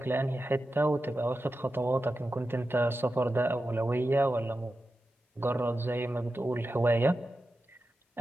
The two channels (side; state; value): both; normal; correlation 0.91